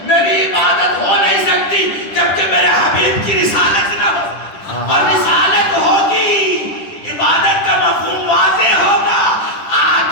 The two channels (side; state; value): right; late; 10 ms